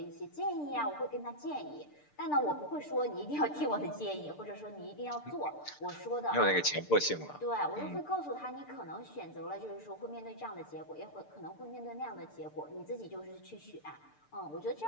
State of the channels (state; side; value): late; right; 6.8 ms